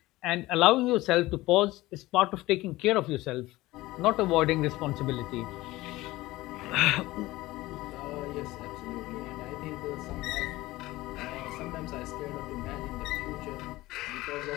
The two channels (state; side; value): quieter; right; 18.6 dB